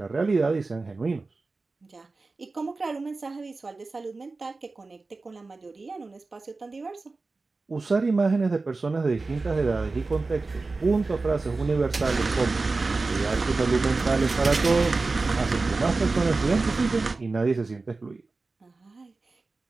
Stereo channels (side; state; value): left; quieter; 3.7 dB